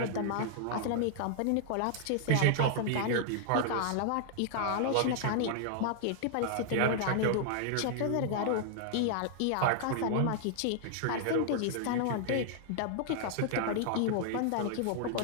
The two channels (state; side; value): different; both; correlation -0.01